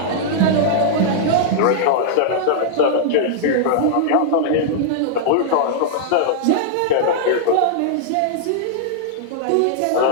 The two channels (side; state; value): both; different; correlation -0.01